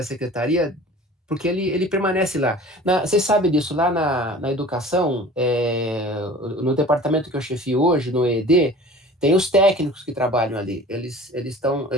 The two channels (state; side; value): normal; both; correlation 0.42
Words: secretaria, porque ele permanece lá. Vocês sabem disso, lá na educação, no departamento que eu chefio hoje, no EED, tem os técnicos que trabalham ali. Eles